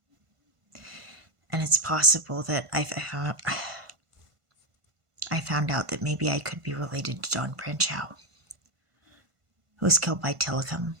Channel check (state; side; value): late; left; 1.5 ms